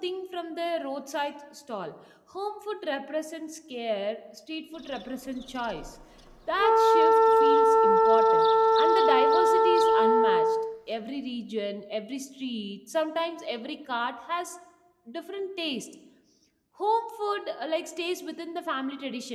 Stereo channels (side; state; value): both; identical; correlation 1.00